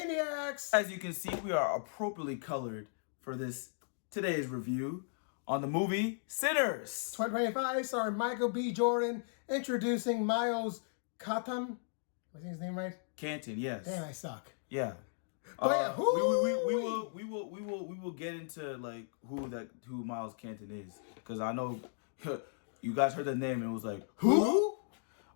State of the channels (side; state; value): right; silent; digital silence